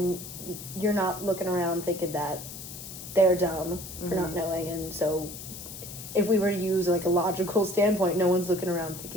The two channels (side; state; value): left; noise; hiss, 11 dB below the sound